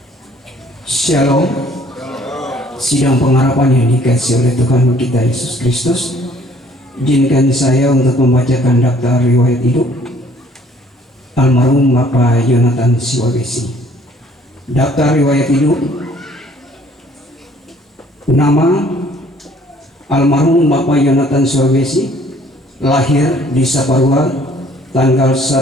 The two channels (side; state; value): both; normal; correlation 0.59